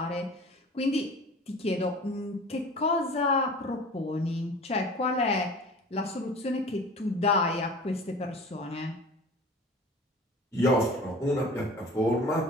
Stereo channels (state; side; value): normal; both; correlation 0.41